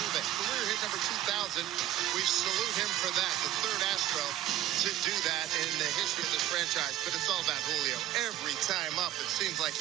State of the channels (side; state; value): left; quieter; 13.1 dB